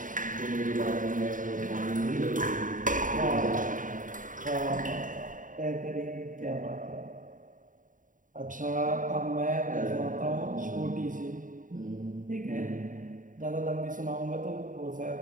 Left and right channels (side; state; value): left; late; 0.38 ms